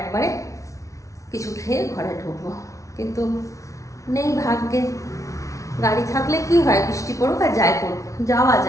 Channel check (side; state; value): right; late; 0.15 ms